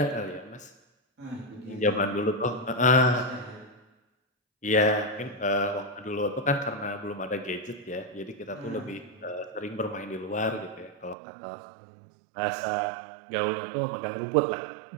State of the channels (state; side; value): drops out; left; at 11.2 s